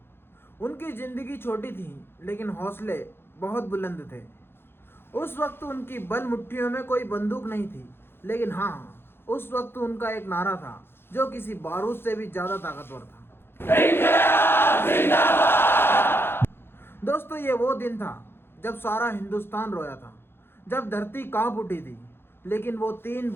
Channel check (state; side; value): late; right; 0.11 ms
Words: उनकी जिंदगी छोटी थी लेकिन हौसले बहुत बुलंद थे। उस वक्त उनकी बल मुट्ठियों में कोई बंदूक नहीं थी, लेकिन हाँ, उस वक्त उनका एक नारा था जो किसी बारूद से भी ज्यादा ताकतवर था। दोस्तों, ये वो दिन था जब सारा हिंदुस्तान रोया था, जब धरती कांप उठी थी, लेकिन वो तीन